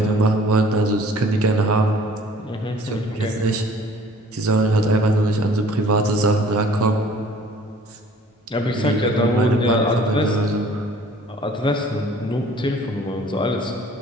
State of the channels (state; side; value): normal; both; correlation 0.52